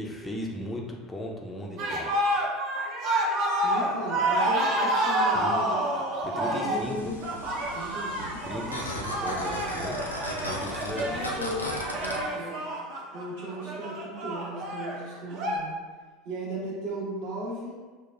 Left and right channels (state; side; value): normal; both; correlation 0.30